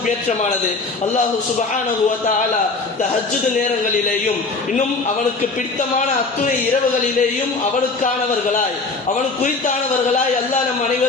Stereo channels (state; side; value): quieter; right; 3.9 dB